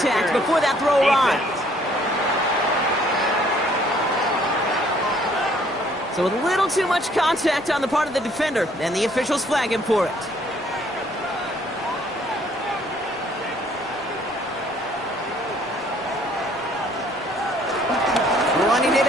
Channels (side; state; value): both; normal; correlation 0.62